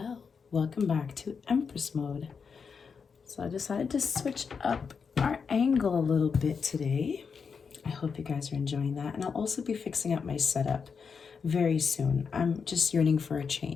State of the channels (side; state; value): right; quieter; 5.8 dB